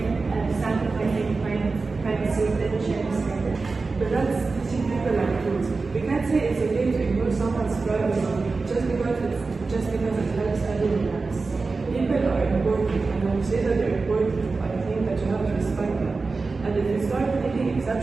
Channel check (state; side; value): quieter; left; 4.0 dB